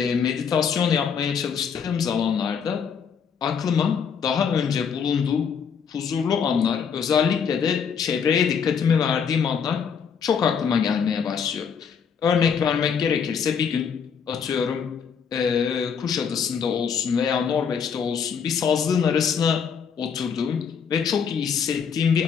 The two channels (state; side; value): quieter; right; 6.8 dB